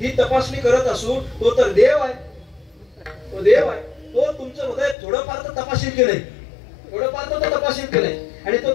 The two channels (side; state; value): right; drops out; at 5.0 s